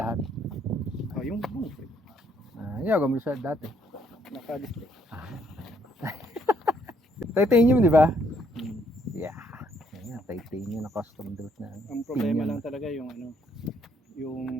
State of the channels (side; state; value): both; normal; correlation 0.68